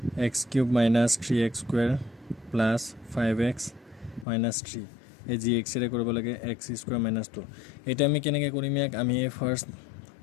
x cube minus 3x square plus 5x minus 3 এই gx ৰে কৰিব লাগে x square minus 2 এটা আমি কেনেকৈ কৰিম ইয়াক আমি ফাৰ্স্ট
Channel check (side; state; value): right; drops out; at 4.2 s